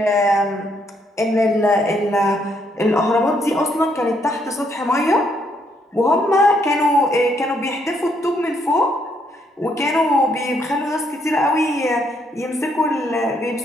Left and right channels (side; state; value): both; normal; correlation 0.73